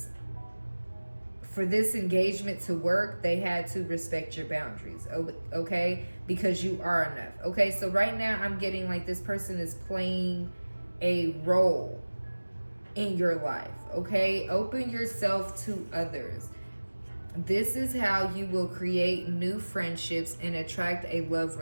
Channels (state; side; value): inverted; both; correlation -1.00